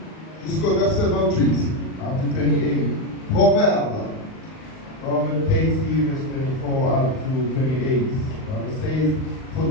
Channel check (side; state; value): right; late; 38 ms